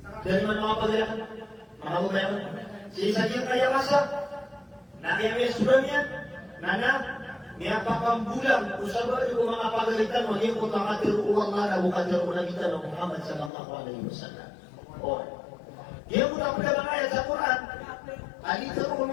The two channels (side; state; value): right; drops out; at 13.5 s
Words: Dari mana mga paglakan? Mga bubayan? Sisagyan kaya masa? Nakiyami sudah niya? Nana? Niya pakambulang usaba yung mga pagalitan maging utakatir uwang nga na bukatir unagitan ng Muhammad sallallahu alaihi wasallam. O, yung muna mga ayat sa Quran, alitarun